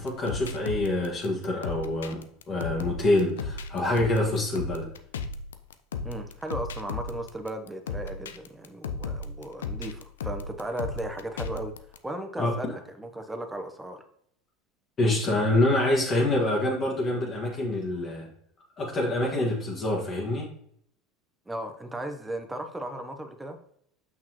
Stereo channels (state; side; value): normal; both; correlation 0.55